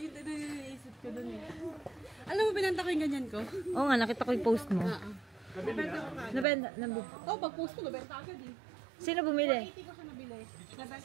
naisip ko dun eh. Alam mo, binanta ko yung ganyan ko? Oo nga, nakita ko yung post mo. Nabenta ko ka. Nabenta. Oh, pag-post ko, nabenta agad eh. Sino bumili? 80 ko siya nabili.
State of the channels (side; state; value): left; drops out; at 6.5 s